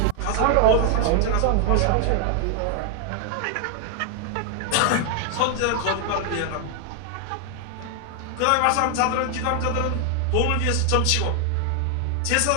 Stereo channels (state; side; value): different; both; correlation 0.00